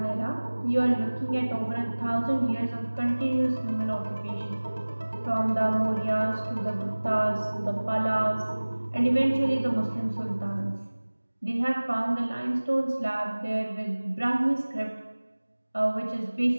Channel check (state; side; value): inverted; both; correlation -1.00